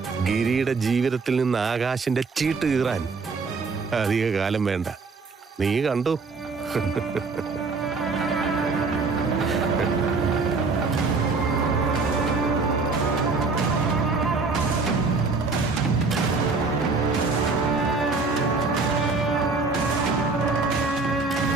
ഗിരിയുടെ ജീവിതത്തിൽ നിന്ന് ആകാശിന്റെ ചീട്ട് കീറാൻ അധിക കാലം വേണ്ട. നീ കണ്ടു.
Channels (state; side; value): quieter; left; 4.2 dB